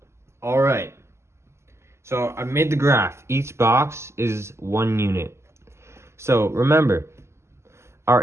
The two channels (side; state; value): left; late; 0.13 ms